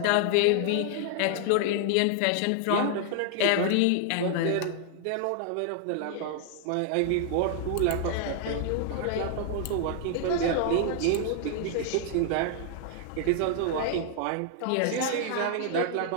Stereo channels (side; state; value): both; different; correlation 0.00